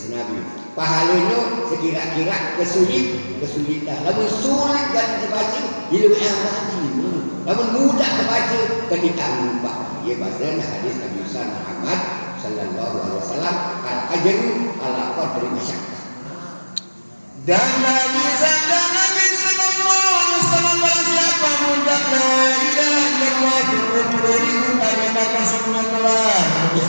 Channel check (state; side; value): inverted; both; correlation -1.00